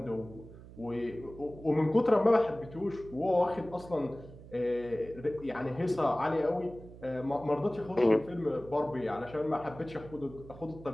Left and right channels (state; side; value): noise; right; hum, 17 dB below the sound